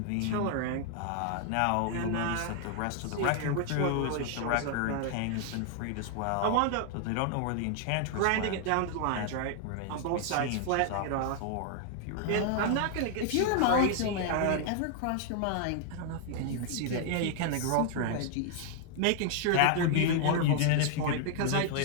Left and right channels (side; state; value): both; different; correlation 0.00